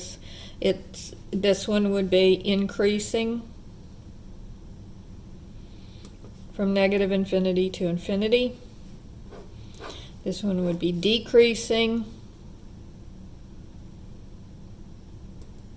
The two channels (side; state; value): both; identical; correlation 1.00